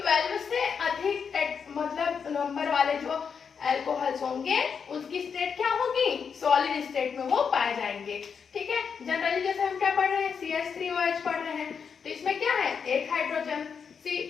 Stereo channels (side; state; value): right; quieter; 6.4 dB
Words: से अधिक मतलब नंबर वाले जो अल्कोहल्स होंगे उसकी स्टेट क्या होगी, सॉलिड स्टेट में वो पाए जाएंगे, ठीक है। जनरली जैसे हम क्या पढ़ रहे हैं, CH3OH पढ़ रहे हैं, तो इसमें क्या है, एक हाइड्रोजन,